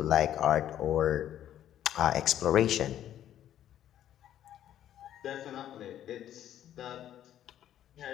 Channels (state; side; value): quieter; right; 11.4 dB